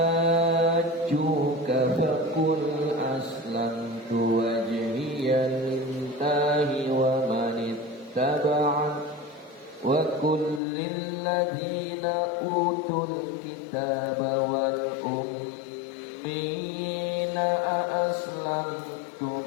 faqul aslamtu wajhiya lillahi wa man ittaba'ani wa kullil ladzina utul kitaba wal ummiyina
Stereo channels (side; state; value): right; drops out; at 10.6 s